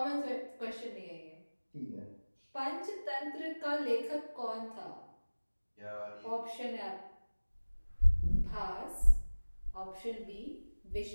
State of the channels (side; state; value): both; inverted; correlation -1.00